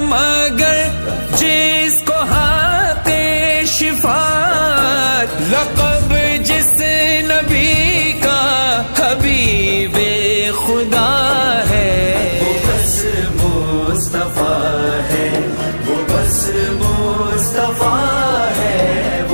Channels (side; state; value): both; inverted; correlation -1.00